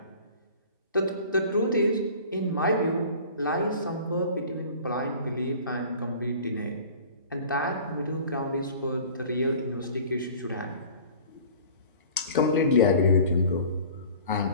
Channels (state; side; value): inverted; both; correlation -0.45